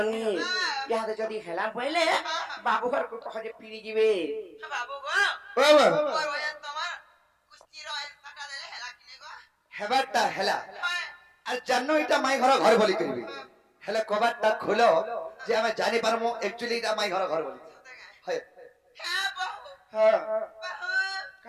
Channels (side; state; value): both; identical; correlation 1.00